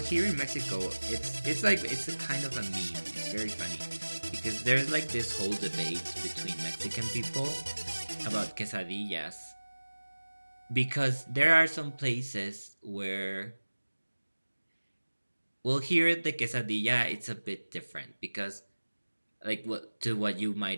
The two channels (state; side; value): inverted; both; correlation -1.00